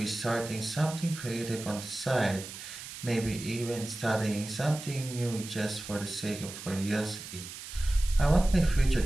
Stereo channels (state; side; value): noise; right; hiss, 11 dB below the sound